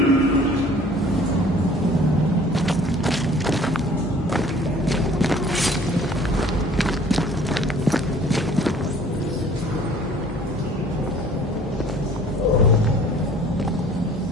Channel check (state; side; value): normal; both; correlation 0.52